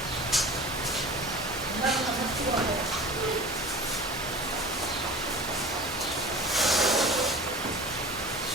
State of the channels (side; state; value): both; normal; correlation 0.39